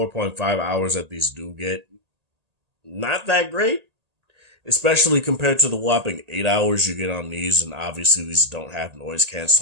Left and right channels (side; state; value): left; late; 1.8 ms